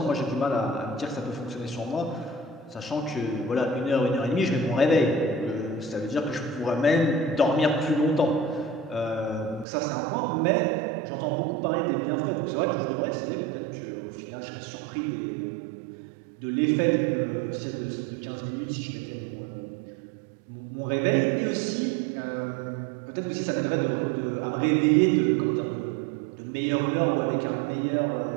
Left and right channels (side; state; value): left; drops out; at 9.7 s